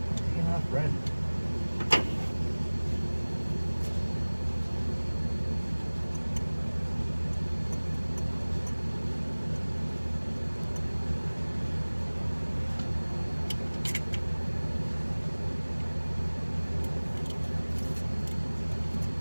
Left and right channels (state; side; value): inverted; both; correlation -1.00